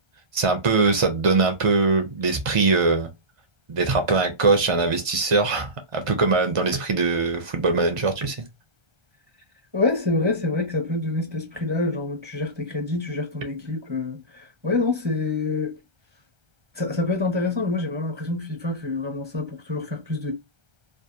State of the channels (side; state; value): left; late; 1.5 ms